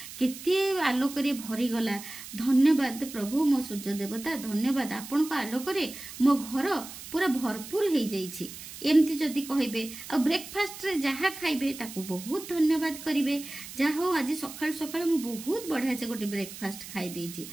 केते आलोक रे भरी गला धन्यवाद प्रभु मो सूर्य देवता धन्यवाद आपण को आलोक रे मो घर पूरा भरपूर हो जाइछि एमती जदि कहबे आ ब्रेकफास्ट रे जहा खाइबे ताको बहुत धन्यवाद करिवे जहा हो आज सकाळ सकाळ मु बहुत बढ़िया से गोटे ब्रेकफास्ट खाइ देछि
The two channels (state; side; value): noise; right; hiss, 13 dB below the sound